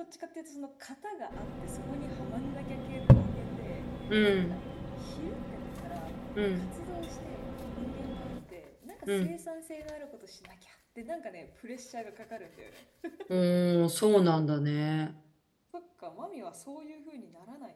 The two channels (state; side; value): identical; both; correlation 1.00